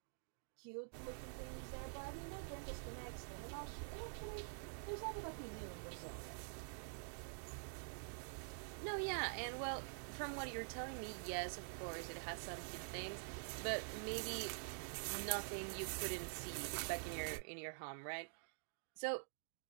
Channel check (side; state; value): left; silent; digital silence